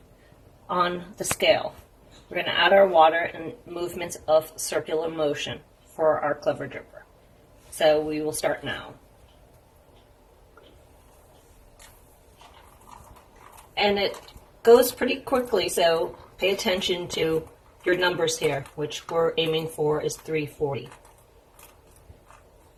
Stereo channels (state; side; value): identical; both; correlation 1.00